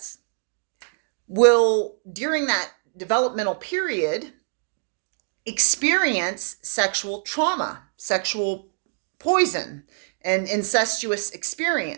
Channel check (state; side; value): silent; left; digital silence